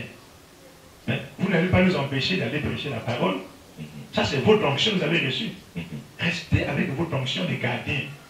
Mais vous n'allez pas nous empêcher d'aller prêcher la parole. Ça, c'est votre onction que vous avez reçue. Restez avec votre onction de gardien.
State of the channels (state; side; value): identical; both; correlation 1.00